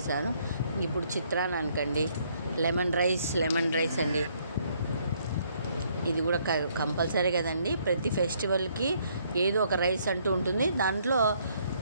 ఇప్పుడు చిత్రాన్నానికండి లెమన్ రైస్ అండి. ఇది కూడా కంపల్సరీ కదండి. ప్రతి ఫెస్టివల్కి ఏదో ఒక రైస్ అంటూ ఉంటుంది. దాంట్లో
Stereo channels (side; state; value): both; inverted; correlation -0.68